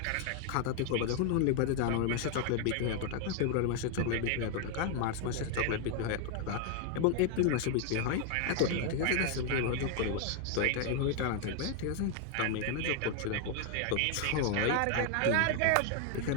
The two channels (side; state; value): both; different; correlation 0.00